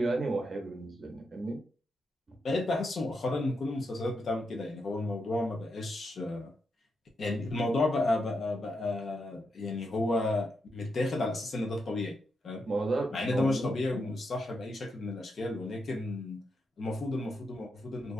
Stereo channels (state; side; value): normal; both; correlation 0.83